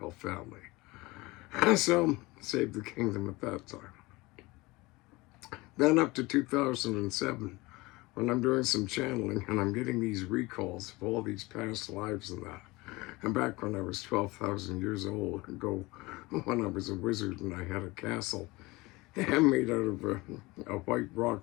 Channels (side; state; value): right; quieter; 22.3 dB